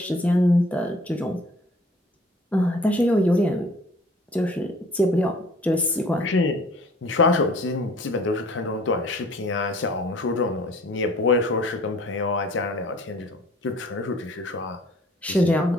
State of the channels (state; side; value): normal; both; correlation 0.52